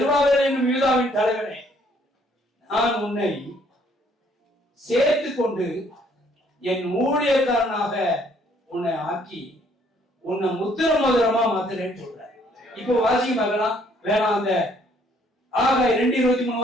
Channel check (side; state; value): both; normal; correlation 0.64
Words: என்னும் யூதாவின் தலைவனே, நான் உன்னை சேர்த்து கொண்டு என் ஊழியக்காரனாக உன்னை ஆக்கி உன்னை முத்திர மோதிரமா மாத்துறேன்னு சொல்றேன். இப்போ வாசிக்க பார்க்கலாம். வேணாம், அந்த ஆகாய 2:23